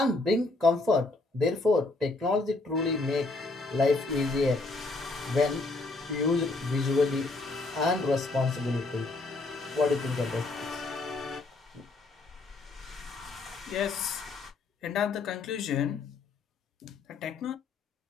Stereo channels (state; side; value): quieter; right; 3.4 dB